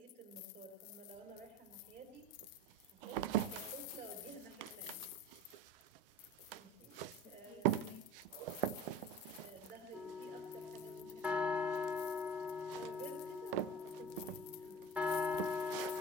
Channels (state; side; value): normal; both; correlation 0.36